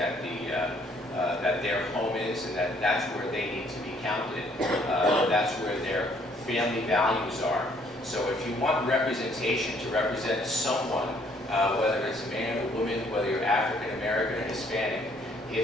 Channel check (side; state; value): both; normal; correlation 0.64